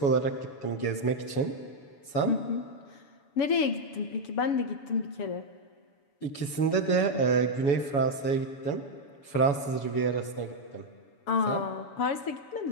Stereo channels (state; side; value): late; right; 7.1 ms